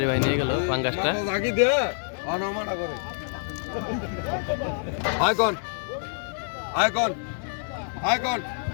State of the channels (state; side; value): silent; right; digital silence